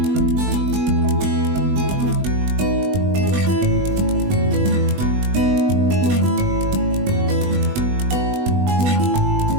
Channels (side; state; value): left; late; 20 ms